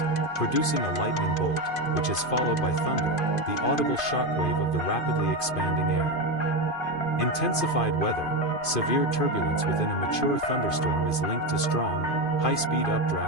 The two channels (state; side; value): late; right; 2.5 ms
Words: producing a lightning bolt, which is followed by thunder, the audible shockwave of the rapidly expanding air. Intensified weather. Severe turbulence within a mature thunderstorm is linked to strong, high-speed